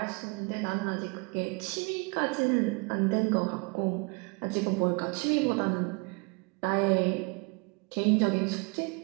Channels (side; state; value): left; quieter; 31.9 dB